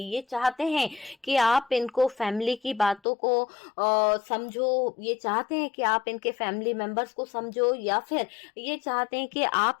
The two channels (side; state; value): right; drops out; at 3.0 s